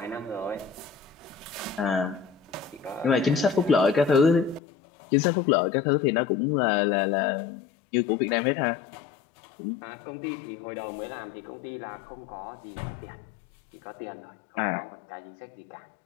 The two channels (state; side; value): drops out; right; at 4.6 s